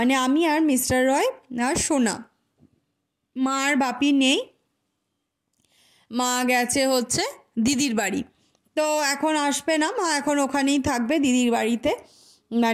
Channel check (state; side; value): identical; both; correlation 1.00